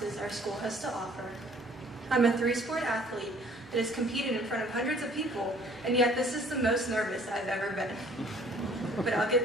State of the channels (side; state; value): both; normal; correlation 0.56